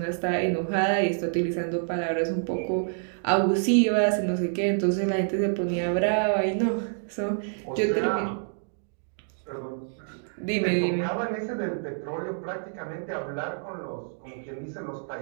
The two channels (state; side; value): silent; left; digital silence